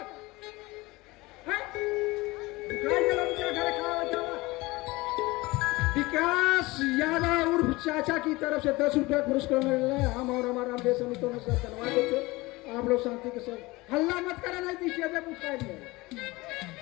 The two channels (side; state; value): right; quieter; 21.6 dB